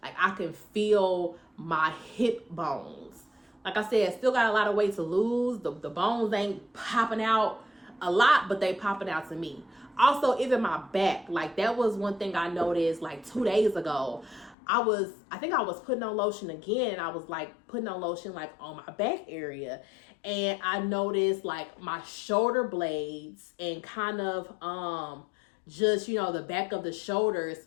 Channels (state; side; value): drops out; right; at 14.6 s